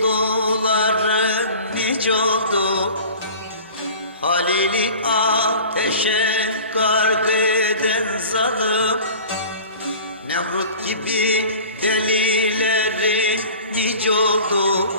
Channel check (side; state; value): both; inverted; correlation -0.41